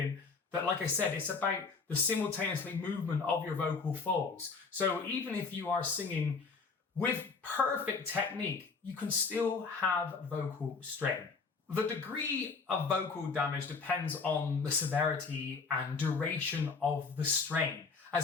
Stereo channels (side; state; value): right; quieter; 4.7 dB